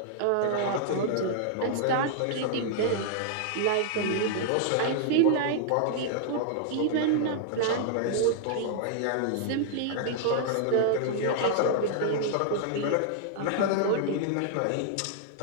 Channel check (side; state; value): both; different; correlation -0.01